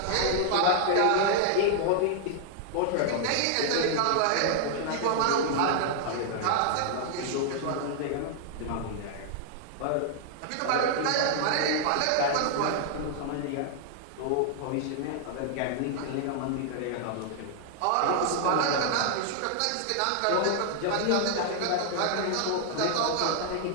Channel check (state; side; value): different; both; correlation -0.01